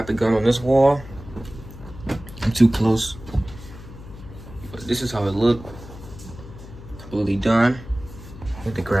the gun on this wall. I'm too close, but this is how it looked. Completely done. I need to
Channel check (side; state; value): left; noise; hum, 15 dB below the sound